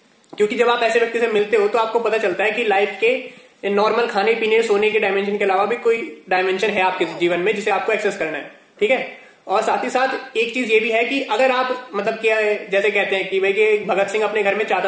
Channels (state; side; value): identical; both; correlation 1.00